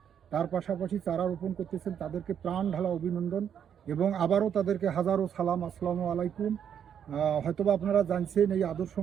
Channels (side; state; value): left; quieter; 8.6 dB